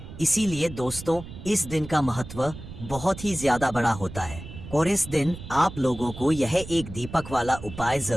इसीलिए दोस्तों इस दिन का महत्व बहुत ही ज्यादा बड़ा होता है और इस दिन आप लोगों को यह एक दीपक वाला उपाय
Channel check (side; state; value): right; noise; rumble, 13 dB below the sound